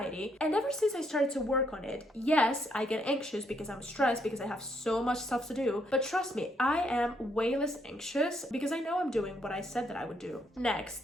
And ever since I started to work on it, yes, I get anxious because I'm stressed because I have so much stuff to do. But trust me, I am way less anxious because I know I'm doing what I said that I would do.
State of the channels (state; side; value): normal; both; correlation 0.73